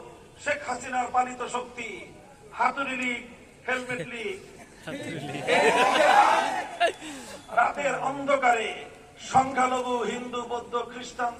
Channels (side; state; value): both; identical; correlation 1.00